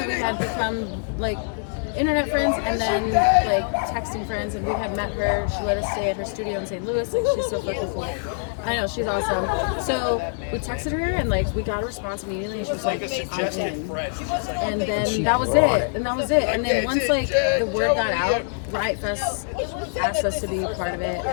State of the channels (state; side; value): silent; right; digital silence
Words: we had become like internet friends and then like texting friends, and we had met her. She let us stay at her studio in St. Louis, and she's so fucking cool. I know, she's awesome. So we texted her and like we got a response immediately, and she was like, I'm in. And then that was it. And then once like the word got out, Riot Fest asked us to be part of it,